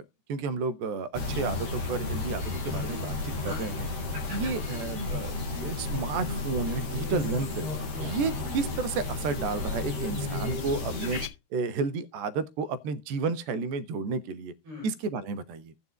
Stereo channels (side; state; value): left; late; 13 ms